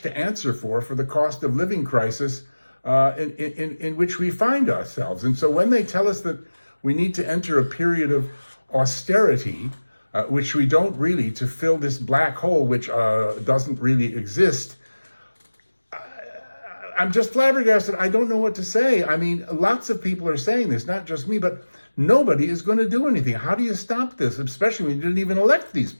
answer for the cost of living crisis in which we find ourselves. And so when they tell us that we need to enter a period of austerity, which we don't really, to fill this black hole, which doesn't really exist, I'm just flabbergasted. I don't know what to say. I mean, lots of people are saying this, not just me, but nobody is going to do anything. How do you stop this, especially when you didn't even elect these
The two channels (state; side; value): inverted; both; correlation -1.00